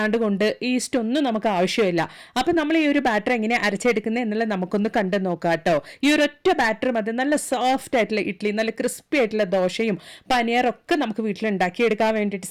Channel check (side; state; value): both; identical; correlation 1.00